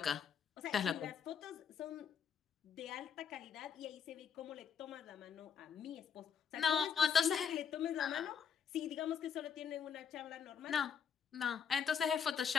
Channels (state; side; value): quieter; right; 7.2 dB